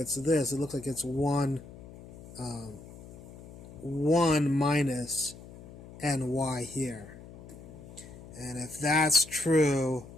this. It looks like it's 1 minus ny here. And if that's true,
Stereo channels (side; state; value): left; noise; hum, 17 dB below the sound